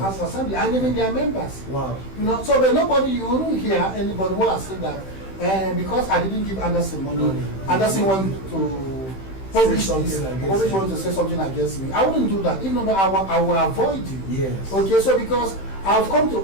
of Assembly, and even their members. Wow. You know, so but nobody, you won't hear anybody who has said that because I didn't give Anderson money, Anderson wanted to publish wanted to say something against me. I wouldn't do that. Even though I will avoid you. Yes. Okay, so because I've come to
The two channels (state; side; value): late; right; 15 ms